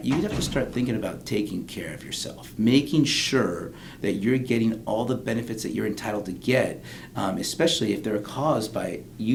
you have to start thinking about taking care of yourself, making sure that you're getting all the benefits that you're entitled to get, especially if they're caused by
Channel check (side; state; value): both; identical; correlation 1.00